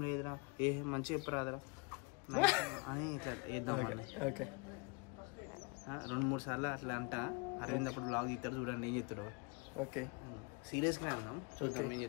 లేదురా, మంచిగా చెప్పరాదురా అని ఇట్లా వేద్దాం. 2-3 సార్లు అట్లా అంట. అరవింద్ అప్పుడు బ్లాగ్ తీస్తాడు, చూడండి ఏం చెప్తాడు. ఓకే, సీరియస్ గా అన్నాం, చూద్దాం ఏం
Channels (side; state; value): right; quieter; 30.4 dB